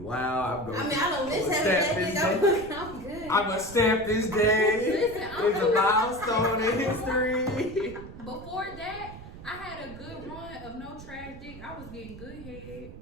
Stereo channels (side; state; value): right; noise; rumble, 15 dB below the sound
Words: while. I don't miss having that dick. I'm good. I'm gonna stamp this day. Listen, It's a milestone in history. Before that, I had a good run of no trash dick. I was getting good head,